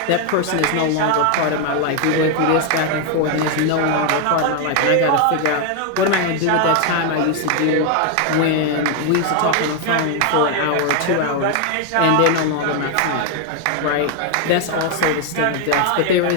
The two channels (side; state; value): both; different; correlation 0.01